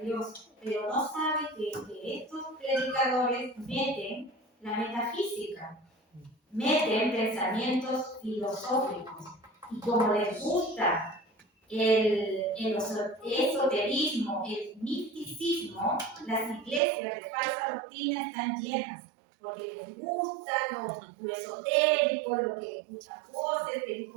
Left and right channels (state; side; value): drops out; left; at 16.8 s